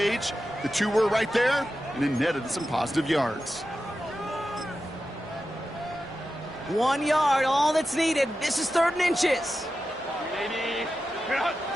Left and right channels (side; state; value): both; normal; correlation 0.91